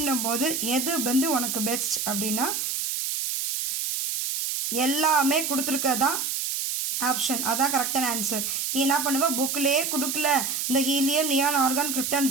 போது எது வந்து உனக்கு பெஸ்ட் அப்படின்னா, எல்லாமே கொடுத்துருக்கதான் ஆப்ஷன், அதான் கரெக்டான ஆன்சர். நீ என்ன பண்ணுவ, புக்கிலே கொடுக்கல, இந்த helium, neon, argon, krypton,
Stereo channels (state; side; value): noise; right; hiss, 2 dB below the sound